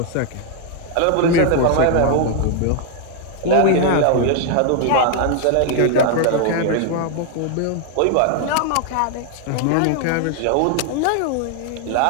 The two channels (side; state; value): both; different; correlation 0.00